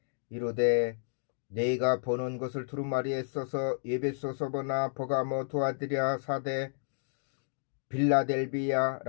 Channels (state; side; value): silent; right; digital silence